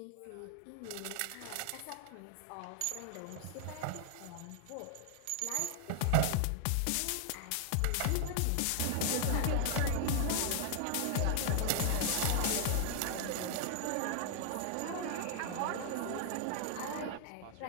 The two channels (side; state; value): both; different; correlation 0.00